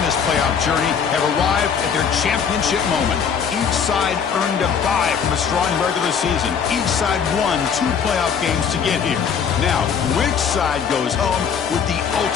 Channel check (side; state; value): right; quieter; 7.0 dB